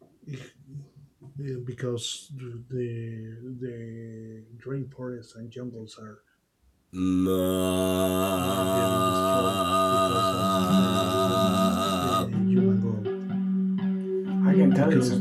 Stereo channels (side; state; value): both; identical; correlation 1.00